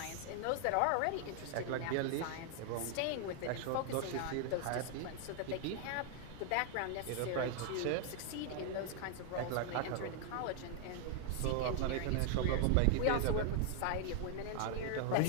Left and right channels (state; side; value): different; both; correlation 0.00